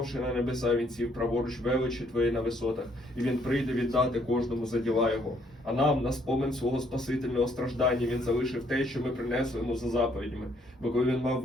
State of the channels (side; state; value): both; normal; correlation 0.67